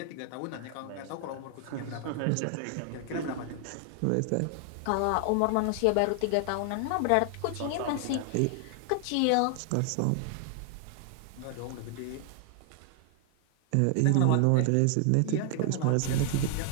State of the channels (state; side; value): different; both; correlation 0.00